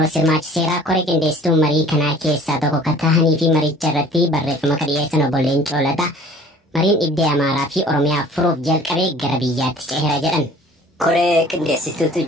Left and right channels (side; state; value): both; normal; correlation 0.50